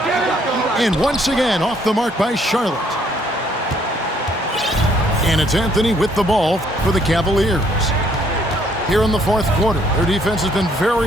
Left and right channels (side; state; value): both; normal; correlation 0.66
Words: And once again off the mark by Charlotte. And it's Anthony with the ball for the Cavaliers. Here in the fourth quarter, their defense has been